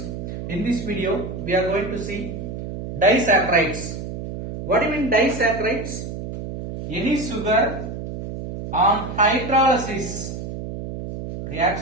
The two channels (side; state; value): right; noise; hum, 7 dB below the sound